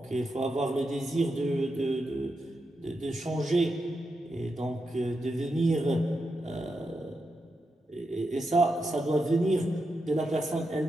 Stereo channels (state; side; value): normal; both; correlation 0.86